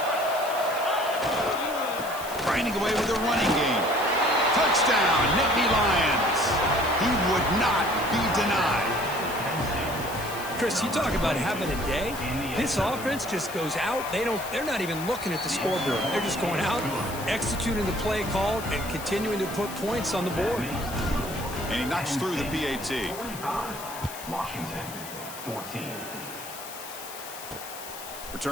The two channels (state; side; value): noise; left; hiss, 12 dB below the sound